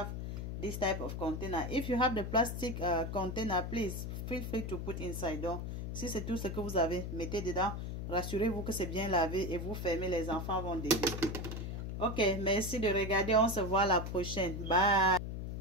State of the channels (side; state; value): left; noise; hum, 5 dB below the sound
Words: this type of container, if you have the plastic container, please feel free to put inside. Donc, si c'est tout ce que vous avez, mettez dedans. Rassurez-vous que c'est bien lavé et vous fermez. Les enfants vont déguster. Ok, merci de regarder. On se voit la prochaine. Bye.